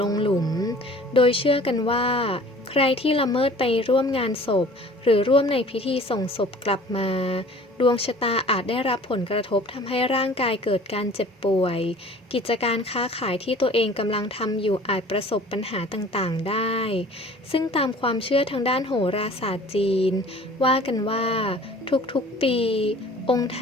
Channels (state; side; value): normal; both; correlation 0.48